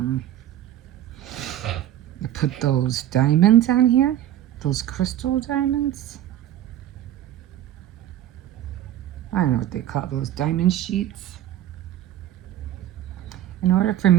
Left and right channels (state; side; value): quieter; left; 12.3 dB